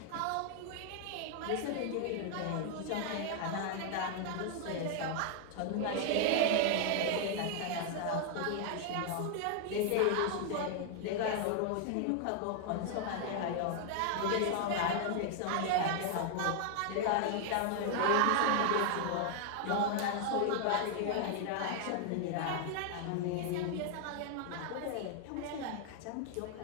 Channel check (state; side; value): different; both; correlation 0.00